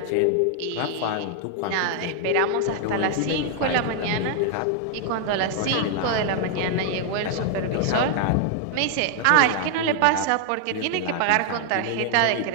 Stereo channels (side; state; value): both; different; correlation 0.00